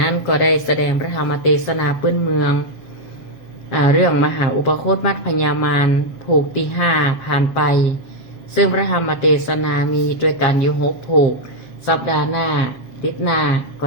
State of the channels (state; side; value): late; right; 7.4 ms